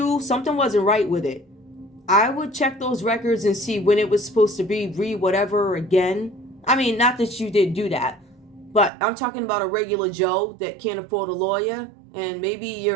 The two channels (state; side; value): drops out; left; at 8.9 s